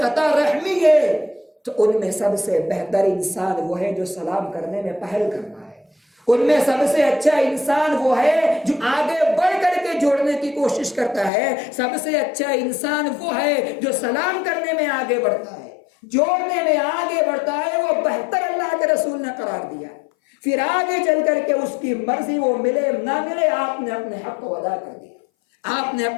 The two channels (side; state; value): right; drops out; at 11.3 s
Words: خطا رحمی ہے، تو ان میں سب سے بہتر انسان وہ ہے جو سلام کرنے میں پہل کرنا ہے۔ ان میں سب سے اچھا انسان وہ ہے جو آگے بڑھ کر کے جوڑنے کی کوشش کرتا ہے۔ سب سے اچھا انسان وہ ہے جو سلام کرنے میں آگے بڑھتا ہے، جوڑنے میں آگے بڑھتا ہے، وہ بہتر اللہ کے رسول نے قرار دیا ہے۔ پھر آگے چل کر کے اس کی مرضی وہ ملے نہ ملے، آپ نے اپنے حق کو ادا کر دیا، آپ نے